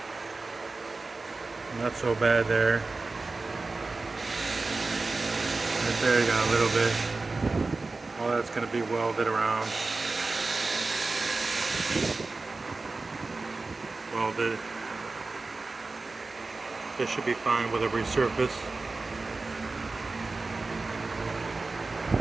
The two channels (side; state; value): left; quieter; 3.6 dB